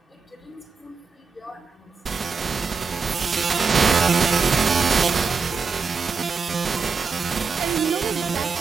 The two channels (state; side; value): quieter; left; 5.0 dB